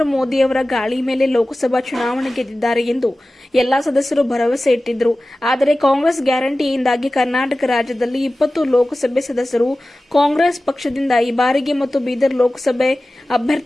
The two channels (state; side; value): normal; both; correlation 0.96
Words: ಮೋದಿ ಅವರ ಗಾಳಿ ಮೇಲೆ ಲೋಕಸಭಾ ಚುನಾವಣೆ ಗೆದ್ದಿದ್ದಾರೆ ಎಂದು ಎಲ್ಲಾ ಸದಸ್ಯರು ಭರವಸೆ ಇಟ್ಟಿದ್ದರು. ಆದರೆ ಕಾಂಗ್ರೆಸ್ ಗ್ಯಾರಂಟಿಯಿಂದಾಗಿ ಕರ್ನಾಟಕ ರಾಜ್ಯದಲ್ಲಿ 20 ಲೋಕಸಭೆ ಸದಸ್ಯರು ಕಾಂಗ್ರೆಸ್ ಪಕ್ಷದಿಂದ ಈ ಬಾರಿಗೆ ಮತ್ತು ಬೀದರ್ ಲೋಕಸಭೆ